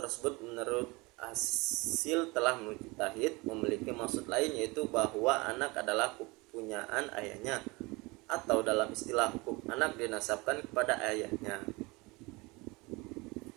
menurut hasil telah mujtahid memiliki maksud lain, yaitu bahwa anak adalah kepunyaan ayahnya, atau dalam istilah hukum anak dinasabkan kepada ayahnya.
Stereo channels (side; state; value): left; quieter; 24.7 dB